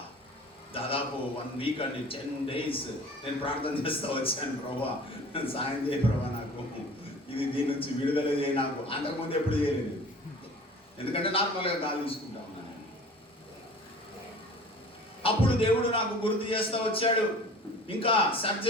దాదాపు 1 వీక్ అండి, 10 days నేను ప్రార్థన చేస్తూ వచ్చాను, ప్రభా సాయం చేయ ప్రభా, నాకు దీని నుంచి విడుదల చేయ. నాకు అంతకుముందు ఎప్పుడు చేయలేదు, ఎందుకంటే నార్మల్గా గాలి తీసుకుంటా ఉన్నాను. అప్పుడు దేవుడు నాకు గుర్తు చేస్తూ వచ్చాడు. ఇంకా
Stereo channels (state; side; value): normal; both; correlation 0.44